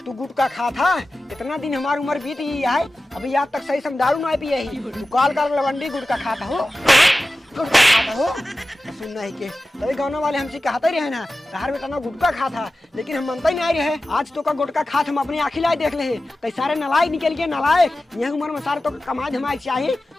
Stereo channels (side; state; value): both; normal; correlation 0.94